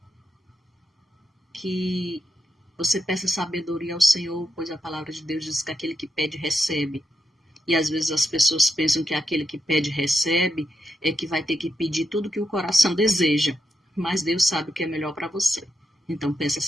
Que você peça sabedoria ao Senhor, pois a palavra de Deus diz que aquele que pede, recebe. E às vezes as pessoas pensam que aquele que pede, recebe, é que vai ter que pedir tudo que o coração deseja. Mas Deus sabe o que é melhor para você. Então peça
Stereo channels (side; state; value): both; normal; correlation 0.83